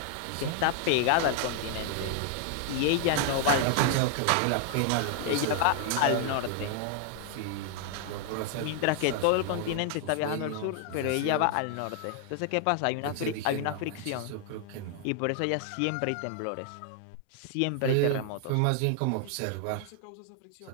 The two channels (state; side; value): different; both; correlation 0.00